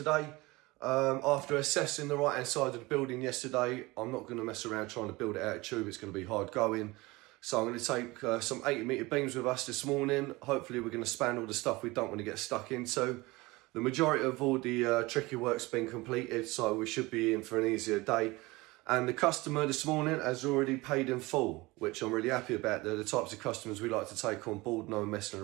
After assessing the right hand side of the building yesterday, I'm not going to mess around trying to build it out of tube. It's going to be hard going. So I'm going to take some 80-metre beams with us this morning. Hopefully we're going to span all the stuff we don't want to get stuck into. The majority of all the tricky work's been completed, so we should be in for an easier day. And the customer this morning has already paid in full, which I'm really happy about. They're the types of customers we like to take on board, no messing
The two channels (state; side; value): quieter; left; 22.1 dB